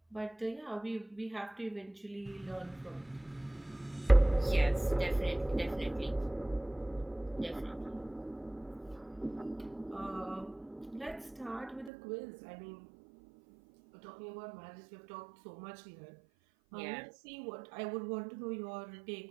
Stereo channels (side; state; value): left; drops out; at 11.9 s